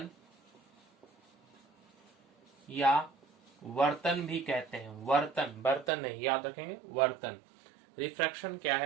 या वर्तन भी कहते हैं। वर्तन, बर्तन नहीं, याद रखेंगे, वर्तन। रिफ्रैक्शन क्या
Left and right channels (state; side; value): drops out; left; at 5.9 s